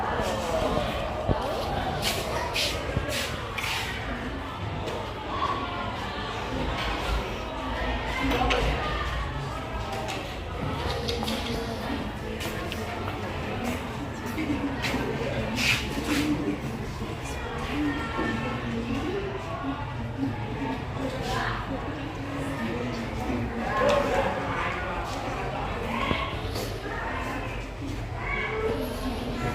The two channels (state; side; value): identical; both; correlation 1.00